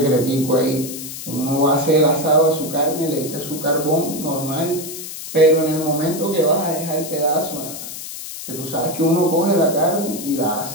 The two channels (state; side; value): noise; left; hiss, 10 dB below the sound